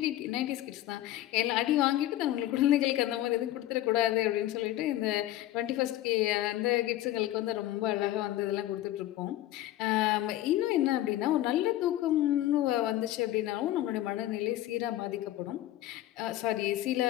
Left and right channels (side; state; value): right; quieter; 14.4 dB